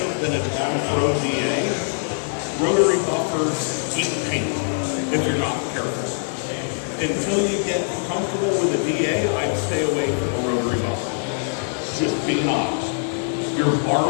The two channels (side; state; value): right; silent; digital silence